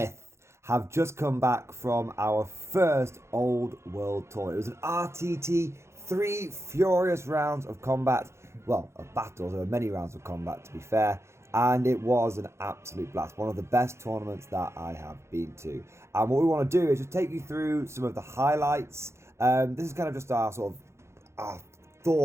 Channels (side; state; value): left; late; 0.13 ms